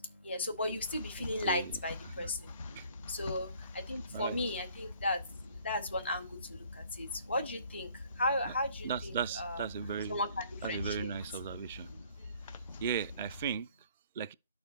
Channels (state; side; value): inverted; both; correlation -0.58